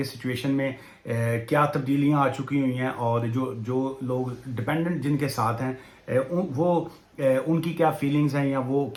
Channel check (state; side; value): identical; both; correlation 1.00